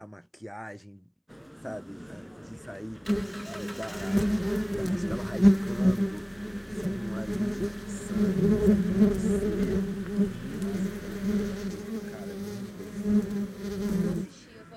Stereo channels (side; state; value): both; identical; correlation 1.00